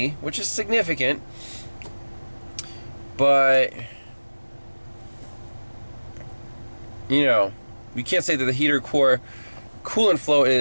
which is significant. But, you know, we can't say that the heater core coolant flow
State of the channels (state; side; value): inverted; both; correlation -1.00